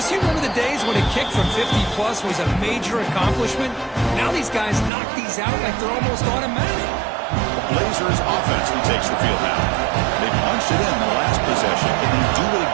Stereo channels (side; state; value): left; drops out; at 4.9 s